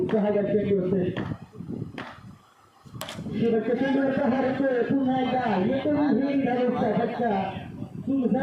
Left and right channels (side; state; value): both; identical; correlation 1.00